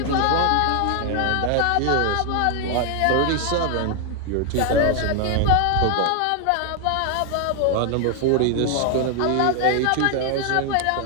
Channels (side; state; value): both; different; correlation 0.00